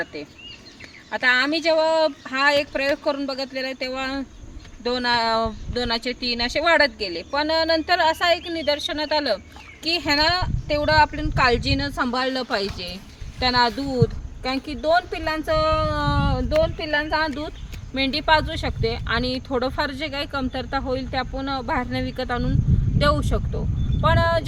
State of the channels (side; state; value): both; identical; correlation 1.00